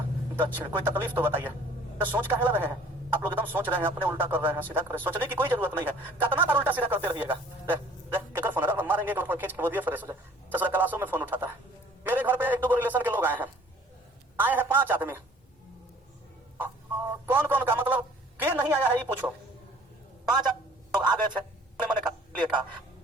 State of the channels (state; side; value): normal; both; correlation 0.53